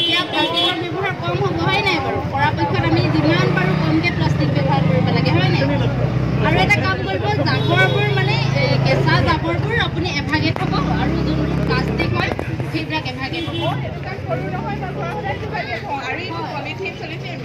প্লাষ্টিকৰ ব্যৱহাৰ কম হ'ব হয় নাই বাৰু পৰাপক্ষত আমি যিমান পাৰোঁ কমকৈ প্লাষ্টিক ব্যৱহাৰ কৰিব লাগে হয় নাই আৰু এটা কাম কৰিব জাবৰবোৰ মানে কেঁচা জাবৰবোৰ আপুনি এভাগে থ'ব আৰু যোনবোৰ প্লাষ্টিক হয় সেইবিলাক এভাগে থ'ব পলিথিন চলিথিন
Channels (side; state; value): both; identical; correlation 1.00